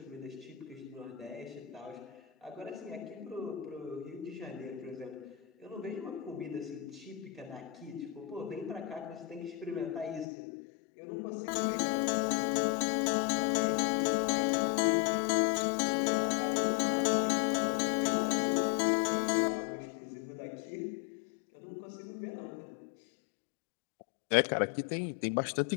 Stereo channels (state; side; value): drops out; right; at 10.2 s